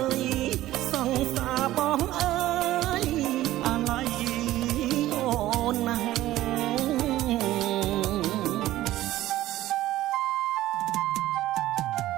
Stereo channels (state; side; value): quieter; left; 15.2 dB